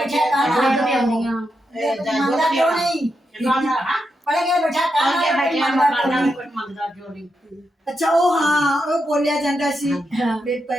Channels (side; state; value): both; normal; correlation 0.85